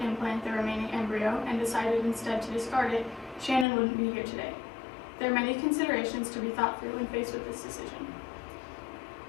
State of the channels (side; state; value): right; drops out; at 3.7 s